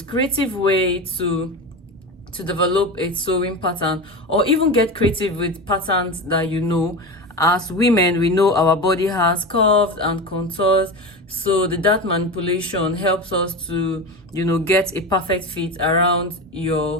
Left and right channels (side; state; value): both; normal; correlation 0.24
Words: creative way to develop a sewing pattern, or even get creative with patterns that you know. As women, we know our body has curves and contours, so the dart manipulation helps us to get a perfect fit around